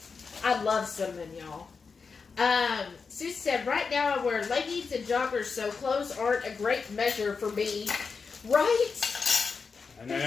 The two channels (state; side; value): quieter; right; 5.1 dB